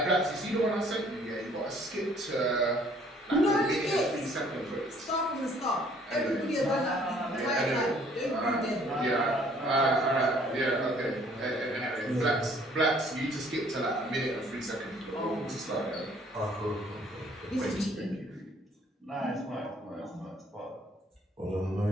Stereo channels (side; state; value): both; normal; correlation 0.59